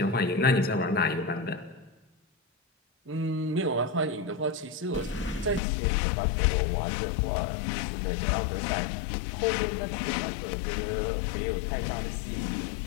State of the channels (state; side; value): drops out; right; at 5.6 s